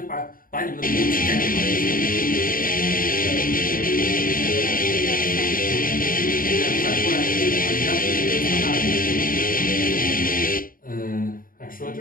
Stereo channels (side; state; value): right; late; 0.41 ms